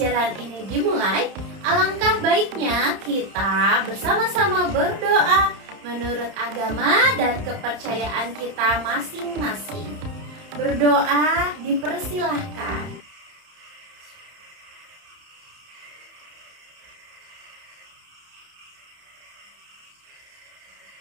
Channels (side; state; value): left; late; 31 ms